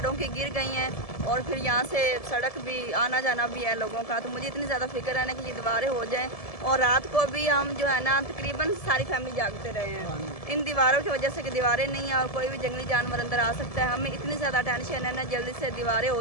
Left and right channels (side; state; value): right; late; 1.7 ms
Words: की गिर गई हैं, और फिर यहाँ से सड़क भी आना जाना भी है लोगों का। तो मुझे इतनी ज़्यादा फिक्र है ना कि ये दीवारें हो जाएं, और रात को भी हम जो है ना तकरीबन सारी फैमिली जागते रहे हैं इन दीवारों की वजह से, कि दीवारें नहीं है और कोई भी जंगली जानवर अंदर आ सकता है। हमें इतनी ज़्यादा टेंशन है ना, जल्दी से दीवारें